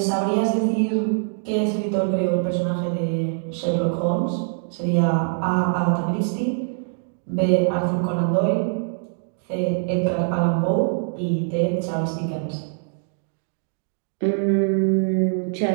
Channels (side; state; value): left; silent; digital silence